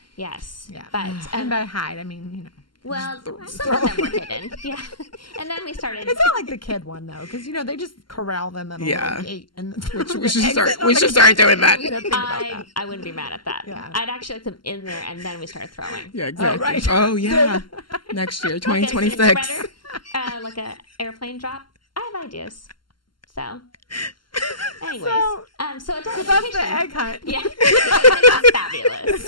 Yes. Yeah. But And by hide, I mean, you know. well, some of them were hidden. Yeah. And then we started. It's not like the kid one, though, because, you know, they just corral them in a Yeah. little gate. And We should start doing that. You know, think about that. I wouldn't be mad at that. Yeah. I'd actually like them in there, and then we started throwing. Yeah, exactly. right. Oh, yeah. Next year, Like a 2026. spreader, like a airplane drop. I have ideas. So, anyways, so adult So that's education. the egg hunt. Yeah, it's fabulous.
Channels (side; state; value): right; late; 0.72 ms